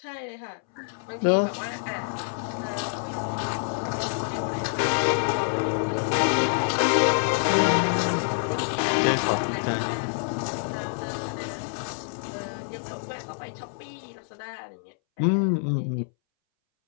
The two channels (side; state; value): right; silent; 60 dB below the other